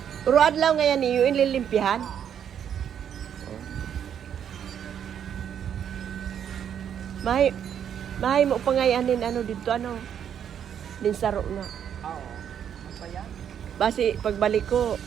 Uruad lang ngayon niyo, inlilimpihan. Mahay, mahay mo pa ngayanin ano dito, ano, linsaro na. Oo. Ano pa yan? Basi, pagbalik ko,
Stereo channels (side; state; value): left; quieter; 8.9 dB